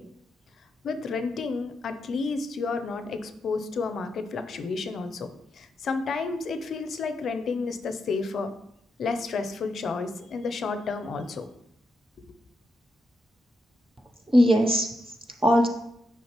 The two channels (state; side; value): normal; both; correlation 0.83